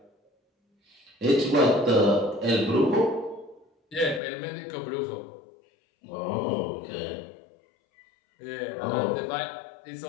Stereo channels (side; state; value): right; drops out; at 4.2 s